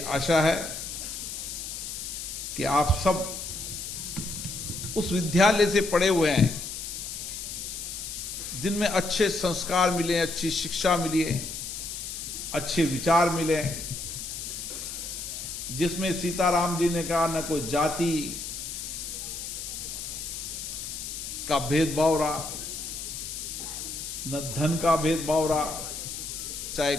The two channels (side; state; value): left; noise; hiss, 7 dB below the sound